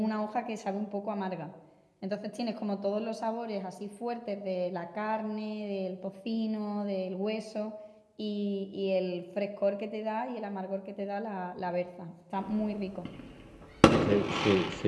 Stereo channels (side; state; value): both; identical; correlation 1.00